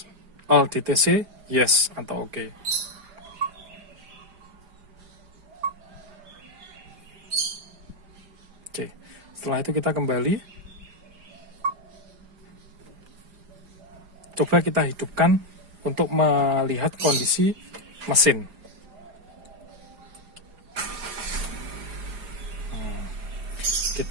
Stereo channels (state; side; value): late; left; 4.9 ms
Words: all DTC? Yes atau oke. Oke, setelah itu kita kembali. Coba kita hidupkan untuk melihat kondisi mesin.